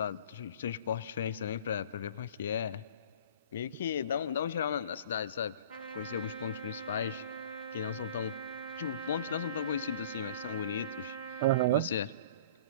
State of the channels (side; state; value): both; inverted; correlation -0.45